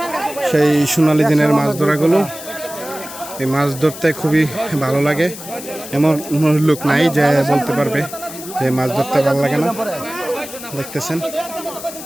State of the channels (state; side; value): noise; left; hiss, 13 dB below the sound